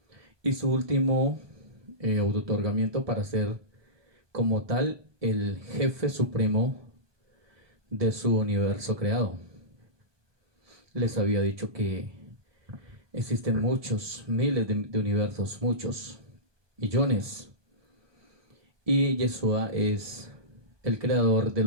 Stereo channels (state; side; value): late; left; 1.2 ms